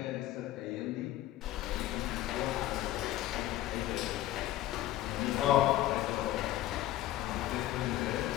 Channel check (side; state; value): right; quieter; 14.6 dB